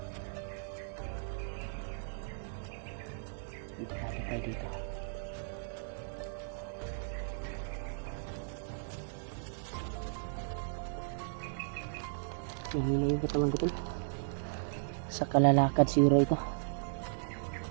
Delikado tayo dito. Nahina yung katawan ko to. Sa kalalakad siguro ito.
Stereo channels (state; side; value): silent; left; digital silence